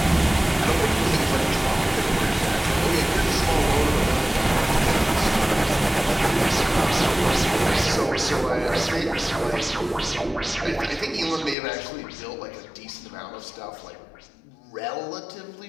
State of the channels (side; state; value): right; drops out; at 11.6 s